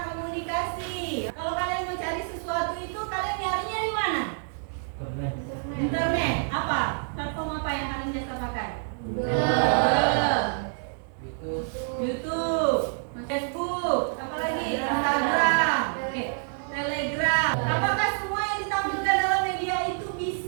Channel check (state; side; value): silent; left; digital silence